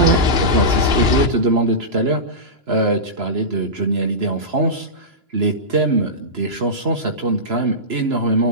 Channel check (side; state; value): left; late; 2.9 ms